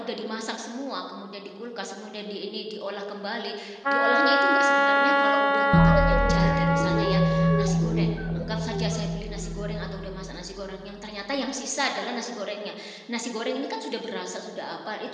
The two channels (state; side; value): identical; both; correlation 1.00